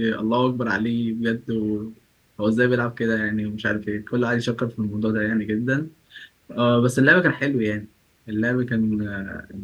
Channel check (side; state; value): both; identical; correlation 1.00